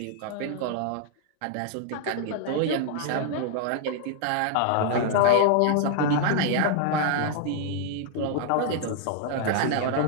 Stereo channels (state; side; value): different; both; correlation 0.00